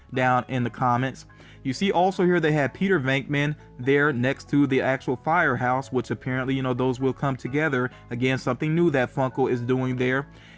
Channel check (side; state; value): both; identical; correlation 1.00